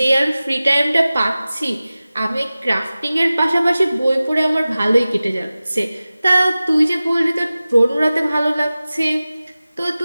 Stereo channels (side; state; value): both; inverted; correlation -0.97